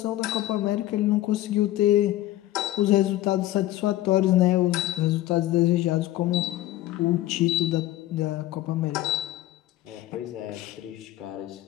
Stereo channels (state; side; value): quieter; right; 15.2 dB